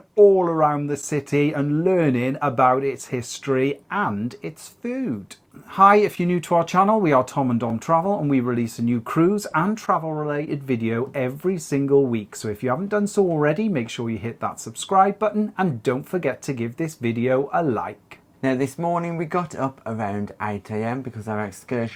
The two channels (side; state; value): both; identical; correlation 1.00